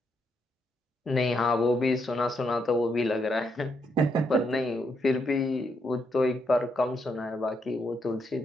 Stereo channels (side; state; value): both; normal; correlation 0.78